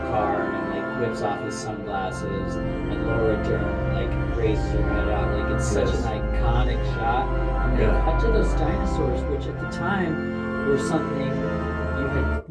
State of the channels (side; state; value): both; identical; correlation 1.00